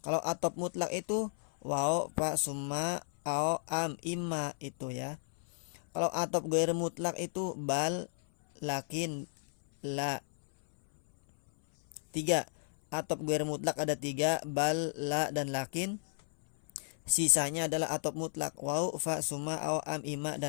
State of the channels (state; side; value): silent; right; 55 dB below the other